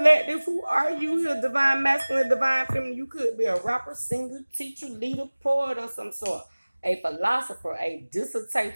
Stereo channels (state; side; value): inverted; both; correlation -1.00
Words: who are you here? Divine masculine, divine feminine. You could be a rapper, singer, teacher, leader, poet, or some sort. A philosopher, a